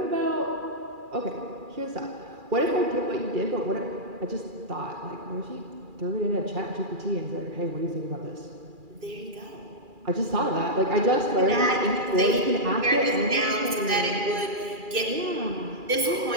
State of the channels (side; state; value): left; late; 2.4 ms